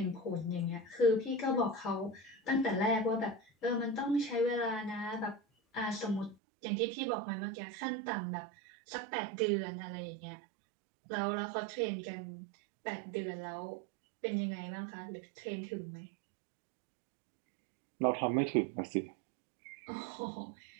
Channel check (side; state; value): left; drops out; at 6.4 s